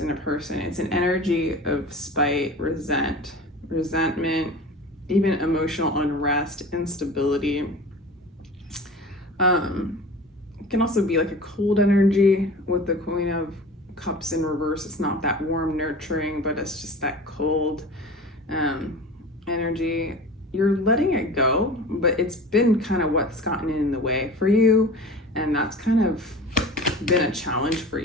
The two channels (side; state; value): both; normal; correlation 0.37